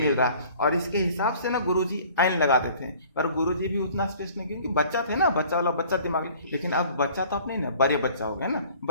रहा है। और इसके हिसाब से ना गुरुजी एन लगाते थे, पर गुरुजी भी उतना स्पेस नहीं, क्योंकि बच्चा थे ना, बच्चा दिमागी। लेकिन अब बच्चा तो अपने ना बड़े बच्चा हो गया ना,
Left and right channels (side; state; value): both; inverted; correlation -0.51